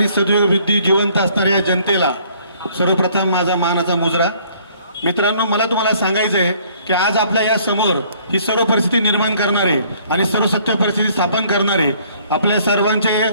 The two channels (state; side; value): inverted; both; correlation -0.60